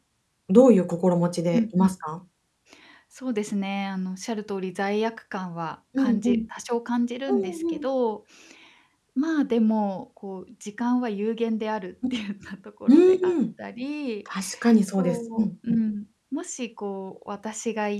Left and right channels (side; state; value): both; identical; correlation 1.00